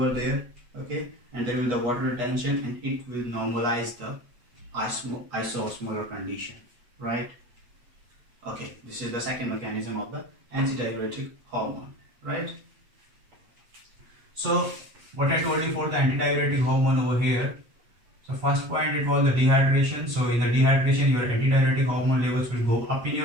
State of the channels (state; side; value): late; left; 8.3 ms